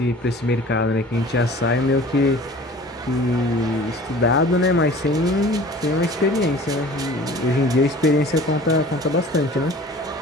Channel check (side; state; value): both; normal; correlation 0.45